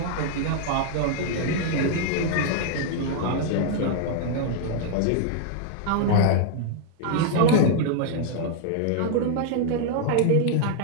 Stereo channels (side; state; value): both; different; correlation 0.00